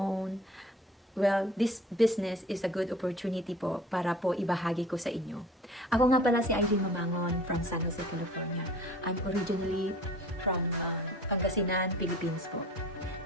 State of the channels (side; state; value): both; normal; correlation 0.45